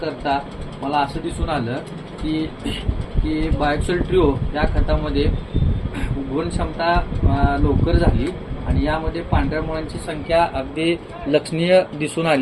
करता मला असं दिसून आलं की बायोक्सिल ट्रिओ या खतामध्ये गुण क्षमता लवकर झाली आणि यामध्ये पांढऱ्या मुळांची संख्या अगदी लक्षणीय दिसून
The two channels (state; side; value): identical; both; correlation 1.00